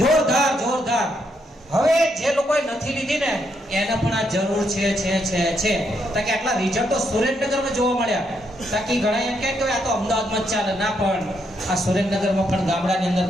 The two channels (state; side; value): normal; both; correlation 0.77